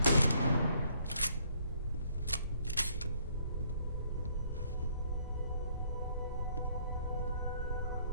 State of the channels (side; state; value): both; inverted; correlation -0.66